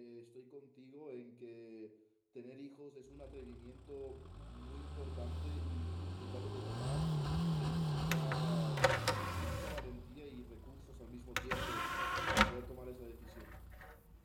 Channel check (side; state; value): both; identical; correlation 1.00